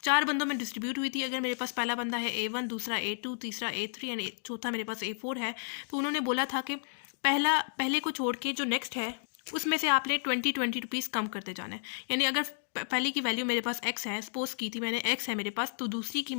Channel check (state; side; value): silent; right; digital silence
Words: 4 बंदों में डिस्ट्रीब्यूट हुई थी। अगर मेरे पास पहला बंदा है A1, दूसरा A2, तीसरा A3 एंड चौथा मेरे पास A4 है, तो उन्होंने बोला था कि पहले को छोड़ के जो नेक्स्ट है उसमें से आपने 20 रुपीज़ कम करते जाना है। यानी अगर पहले की वैल्यू मेरे पास x है, सपोज की थी मैंने x है मेरे पास, तो दूसरी की